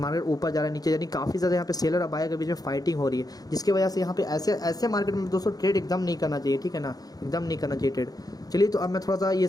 मार्केट ऊपर जा रहा है, नीचे नीचे, यानी काफ़ी ज़्यादा यहाँ पे सेलर और बायर के बीच में फाइटिंग हो रही है, जिसकी वजह से यहाँ पे ऐसे मार्केट में दोस्तों ट्रेड एकदम नहीं करना चाहिए, ठीक है ना, एकदम नहीं करना चाहिए ट्रेड। चलिए तो अब मैं थोड़ा सा ये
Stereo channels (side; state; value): right; late; 0.18 ms